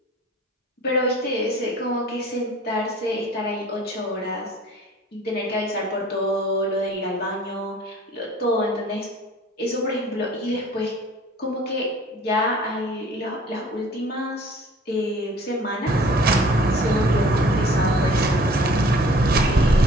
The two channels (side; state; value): both; normal; correlation 0.49